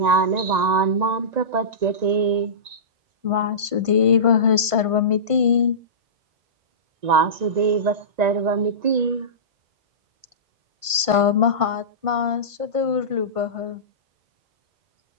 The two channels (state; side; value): late; left; 1.5 ms